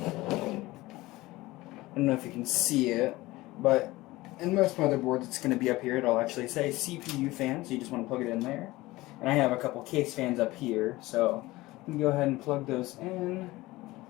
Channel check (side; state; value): right; quieter; 19.3 dB